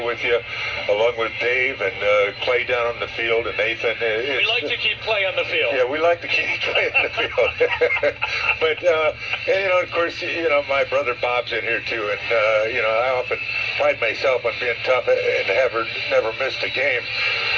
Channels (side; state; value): both; identical; correlation 1.00